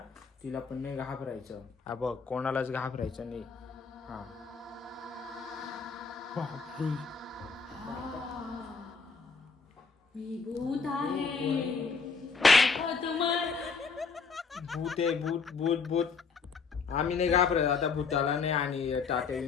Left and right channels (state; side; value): quieter; right; 5.1 dB